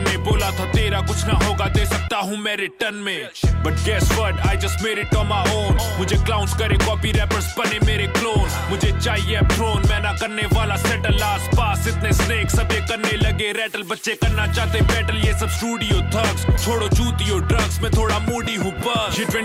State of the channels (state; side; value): identical; both; correlation 1.00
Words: बोला था तेरा कुछ ना होगा दे सकता हूँ मैं रिटर्न में। But guess what I just made it on my own. मुझे क्लाउन्स करे कॉपी रैपर्स बने मेरे क्लोन। मुझे चाहिए थ्रोन मैं ना करने वाला सेटल। आस पास इतने स्नेक सब ये करने लगे रैटल। बच्चे करना चाहते बैटल ये सब स्टूडियो थग्स। छोड़ो जूतियों ड्रग्स में थोड़ा मूडी हूँ बस। ये